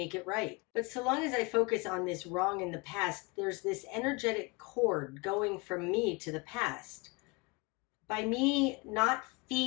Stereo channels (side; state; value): right; quieter; 27.4 dB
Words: it right. But so long as I focus on this wrong in the past, there's this energetic cord going from me to the past. By me not